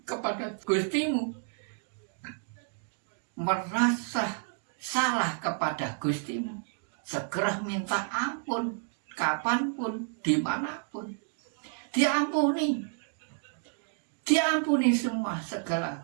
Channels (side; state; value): left; silent; 57 dB below the other